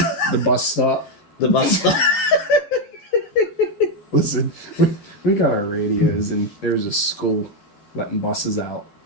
The bus stop. The bus stop. Listen, we got our radios, and there was a school letting buses out.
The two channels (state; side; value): late; right; 12 ms